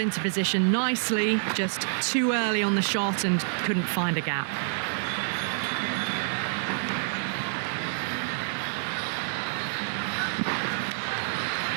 position nicely, just too early on the shot and couldn't find a gap.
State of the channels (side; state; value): left; silent; digital silence